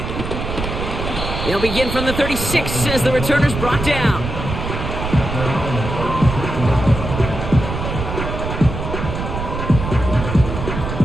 They'll begin from the 36 as the returners brought down.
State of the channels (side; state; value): right; noise; rumble, 5 dB below the sound